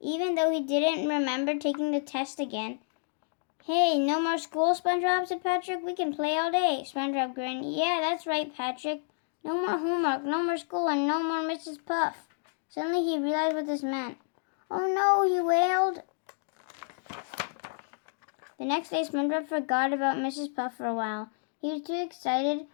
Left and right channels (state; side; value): silent; right; digital silence